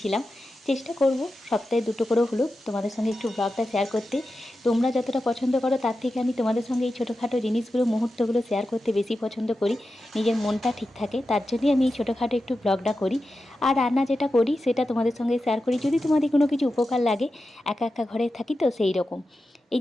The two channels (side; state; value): both; normal; correlation 0.91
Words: চেষ্টা করব সপ্তাহে 2টো করেও হলো তোমাদের সঙ্গে একটু ব্লগটা শেয়ার করতে। তোমরা যতটা পছন্দ করো তার থেকে আমি তোমাদের সঙ্গে এই ছোটোখাটো জিনিসগুলো, মুহূর্তগুলো শেয়ার করতে বেশি পছন্দ করি। নিজের মনটা ঠিক থাকে, তার জন্যই আমি এই ছোটোখাটো একটু ব্লগটা করি। আর রান্না যেটা করি সেটা তোমাদের সঙ্গে শেয়ার করি, যদি তোমাদের কোনো কিছু উপকার লাগে। একা একা ঘরে থাকি তো সেই রকম। এই